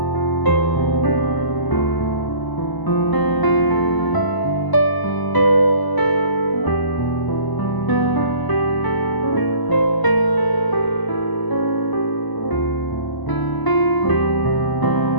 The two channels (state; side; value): late; right; 1.0 ms